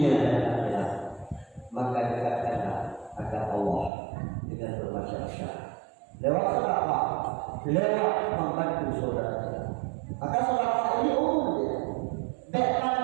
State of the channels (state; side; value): drops out; left; at 3.9 s